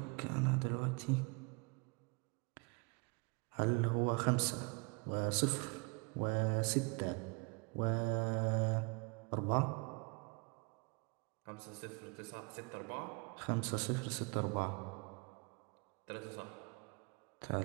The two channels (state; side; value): quieter; left; 30.9 dB